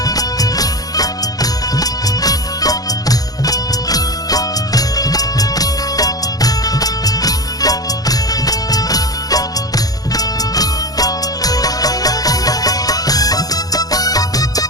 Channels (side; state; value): right; late; 0.18 ms